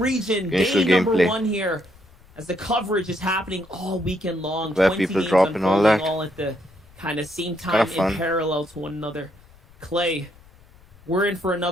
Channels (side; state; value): left; noise; rumble, 26 dB below the sound